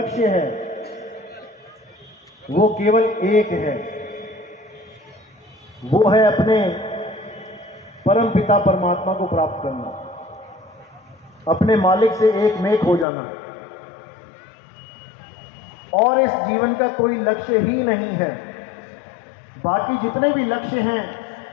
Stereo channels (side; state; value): right; drops out; at 13.1 s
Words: है वो केवल एक है, वो है अपने परम पिता परमात्मा को प्राप्त करना, अपने मालिक से एक मेक हो जाना। और इस जीवन का कोई लक्ष्य ही नहीं है। बाकी जितने भी लक्ष्य हैं